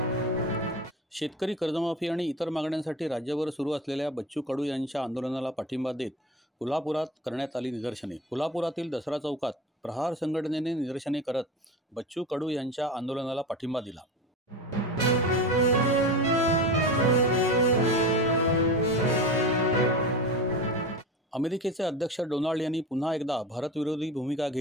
शेतकरी कर्जमाफी आणि इतर मागण्यांसाठी राज्यभर सुरू असलेल्या बच्चू कडू यांच्या आंदोलनाला पाठिंबा देत कोल्हापुरात करण्यात आली निदर्शने. कोल्हापुरातील दसरा चौकात प्रहार संघटनेने निदर्शने करत बच्चू कडू यांच्या आंदोलनाला पाठिंबा दिला. अमेरिकेचे अध्यक्ष डोनाल्ड यांनी पुन्हा एकदा भारतविरोधी भूमिका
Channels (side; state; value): both; normal; correlation 0.29